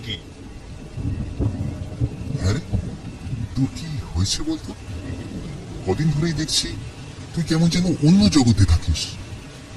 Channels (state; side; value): identical; both; correlation 1.00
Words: আরে তোর কি হয়েছে বলতো? কদিন ধরেই দেখছি তুই কেমন যেন অন্য জগতে থাকিস।